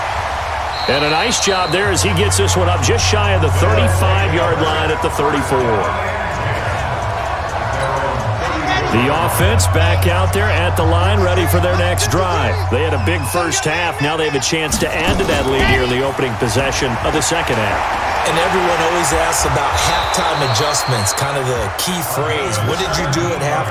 And a nice job there as he gets this one up just shy of the 35-yard line at the 34. The offense back out there at the line, ready for their next drive. They had a big first half. Now they have a chance to add to that lead here in the opening possession of the second half. And everyone always asks about halftime adjustments, kind of the key phrase. What did you do at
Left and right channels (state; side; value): identical; both; correlation 1.00